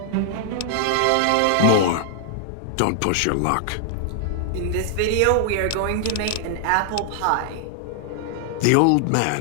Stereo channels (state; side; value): different; both; correlation 0.00